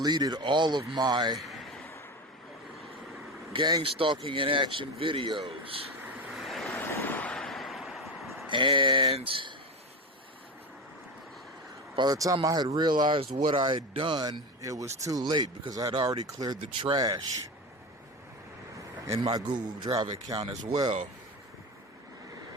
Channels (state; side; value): normal; both; correlation 0.22